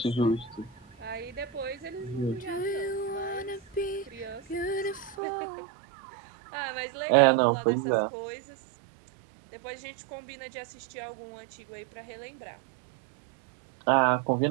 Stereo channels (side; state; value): left; drops out; at 5.2 s